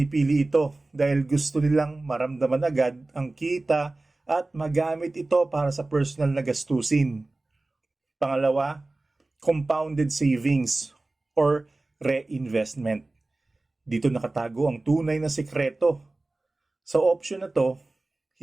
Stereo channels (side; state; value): left; quieter; 3.0 dB